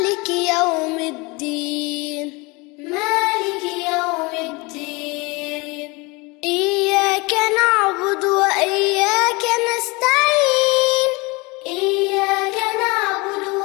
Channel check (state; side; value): quieter; right; 25.9 dB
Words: يوم الدين. مالك يوم الدين. إياك نعبد وإياك نستعين. إياك نعبد